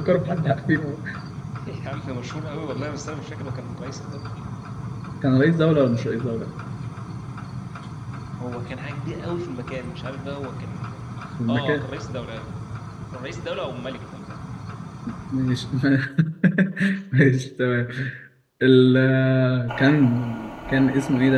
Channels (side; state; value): both; identical; correlation 1.00